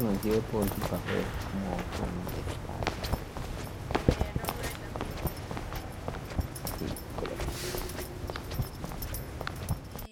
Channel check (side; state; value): both; identical; correlation 1.00